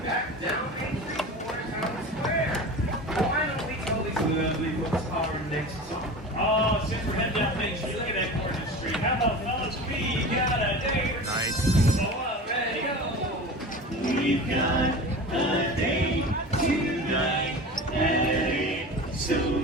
back down Main Street towards Town Square. Why don't we tell these lovely folks our next song? Oh, since we're heading down Main Street, look at that corner street. How about fellas? We got a date. Nice. So ready, go. We've got a date tonight at 8, so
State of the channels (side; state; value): both; normal; correlation 0.33